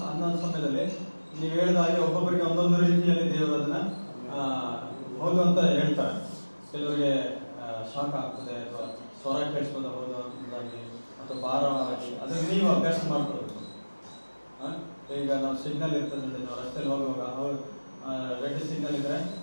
ಅನ್ನೋ ಸಮಯದಲ್ಲಿ ನೀವು ಹೇಳಿದ ಹಾಗೆ ಒಬ್ಬೊಬ್ಬರಿಗೆ ಒಂದೊಂದು ರೀತಿಯಲ್ಲಿ ದೇವರು ಅದನ್ನ ಹೌದು ಅಂತ ಹೇಳ್ತಾರೆ. ಕೆಲವರಿಗೆ ಶಾಕ್ ಆಗ್ತದೆ ಅಥವಾ ಸ್ವರ ಕೇಳಿಸ್ಬೋದು ಹೌದು ಅಂತಾಗಿ ಅಥವಾ ಭಾರವಾಗಿ, ಅದನ್ನು ನೀವು ಅಭ್ಯಾಸ ಮಾಡ್ಕೊಳ್ಬೇಕು. ಈಗ ನಾವು ಸಿಗ್ನಲ್ ಇರ್ತದೆ ನೋಡಿ, ನಾವು ರಸ್ತೆಯಲ್ಲಿ ಹೋಗುವಾಗ ರೆಡ್ ಸಿಗ್ನಲ್ ಇದ್ರೆ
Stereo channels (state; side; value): inverted; both; correlation -1.00